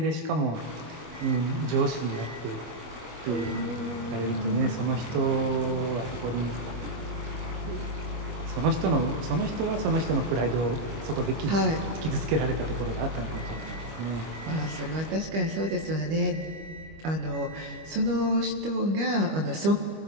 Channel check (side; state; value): left; late; 25 ms